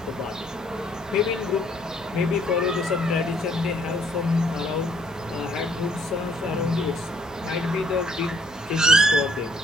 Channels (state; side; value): normal; both; correlation 0.64